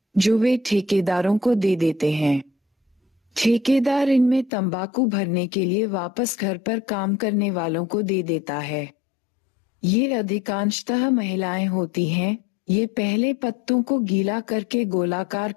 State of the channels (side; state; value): right; drops out; at 4.5 s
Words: जो वे ठेकेदारों को दे देते हैं। ठेकेदार इनमें तंबाकू भरने के लिए वापस घर पर काम करने वालों को दे देता है। ये अधिकांशतः महिलाएं होती हैं। ये पहले पत्तों को गीला करके गोलाकार